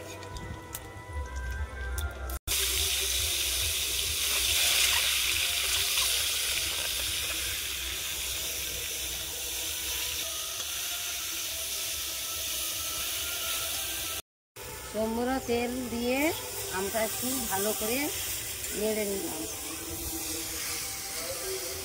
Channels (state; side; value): identical; both; correlation 1.00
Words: সম্পূর্ণ তেল দিয়ে আমটা একটু ভালো করে নেড়ে নিলাম।